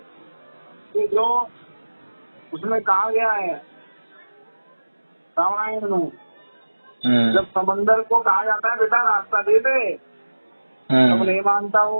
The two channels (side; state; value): both; inverted; correlation -1.00